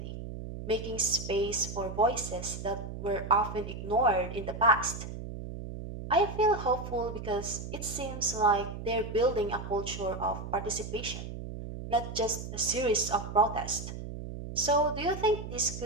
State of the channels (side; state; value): right; noise; hum, 8 dB below the sound